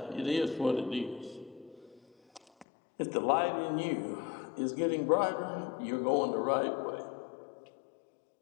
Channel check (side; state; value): right; drops out; at 2.7 s